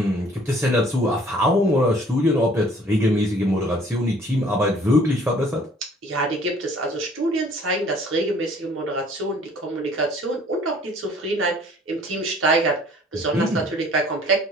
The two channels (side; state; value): both; normal; correlation 0.55